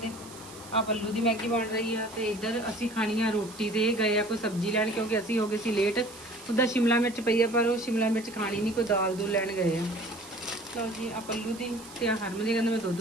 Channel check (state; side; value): noise; right; hiss, 18 dB below the sound